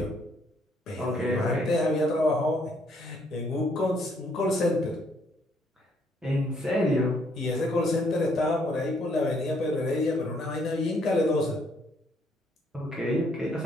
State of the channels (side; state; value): both; normal; correlation 0.68